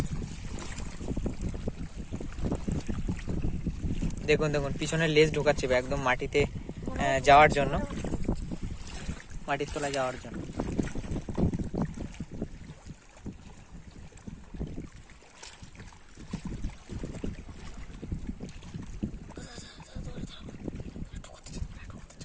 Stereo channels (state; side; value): identical; both; correlation 1.00